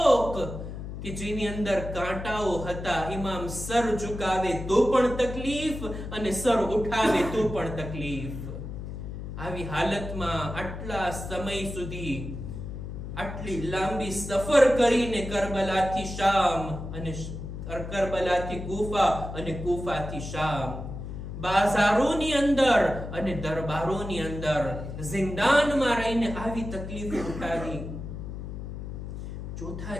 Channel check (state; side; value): noise; left; hum, 8 dB below the sound